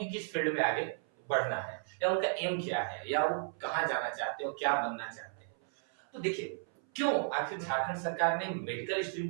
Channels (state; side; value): silent; left; 55 dB below the other